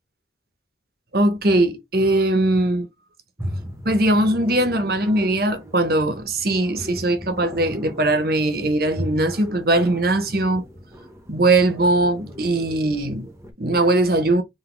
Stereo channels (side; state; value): both; normal; correlation 0.46